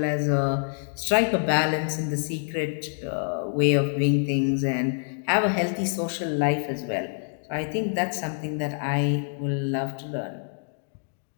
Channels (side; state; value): right; silent; 60 dB below the other